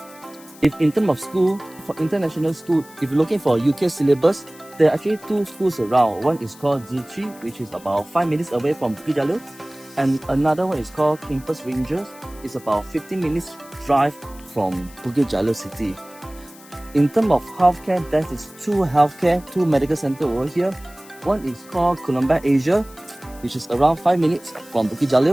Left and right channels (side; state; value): left; noise; hiss, 22 dB below the sound